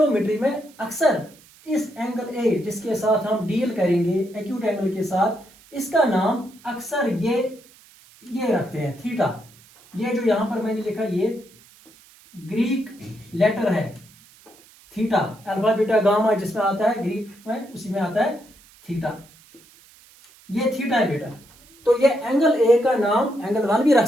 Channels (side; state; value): right; noise; hiss, 26 dB below the sound